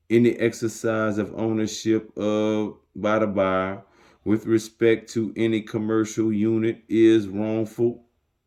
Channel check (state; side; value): identical; both; correlation 1.00